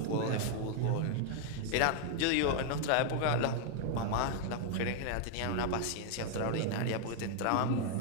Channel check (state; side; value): different; both; correlation 0.00